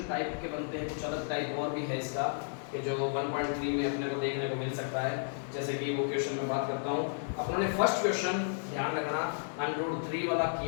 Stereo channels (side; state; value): right; silent; digital silence